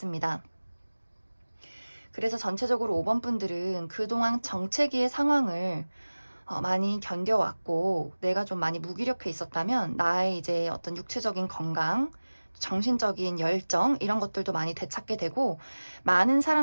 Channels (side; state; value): both; inverted; correlation -1.00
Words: 그래서 전체적으로 5번 분들은 그동안 정체기의 상황을 많이 견뎌왔고 내가 좀 많이 무기력해 있었다면 나의 이제 어떤 육체적인 건강, 정신적인 열정 이런 것들도 많이 되찾게 되고 많은